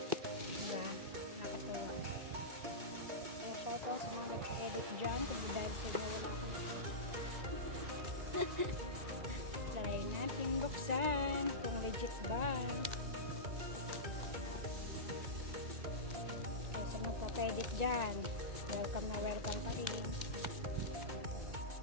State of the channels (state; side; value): late; left; 2.2 ms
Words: Diba? Nakatuwa. Kaya kahit lang sa mga nagpa-edit dyan, kung dahil sa inyo wala akong try natin buksan kung legit ba. Kaya sa magpa-edit dyan, welcome na welcome pa rin.